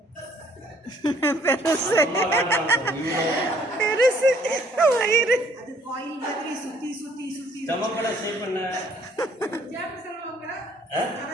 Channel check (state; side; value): normal; both; correlation 0.62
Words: பெருசு பெருசு வயிறு. அது காயில் மாதிரி சுத்தி சுத்தி சுத்தி. ஸ்டமக்கோட ஷேப் என்ன?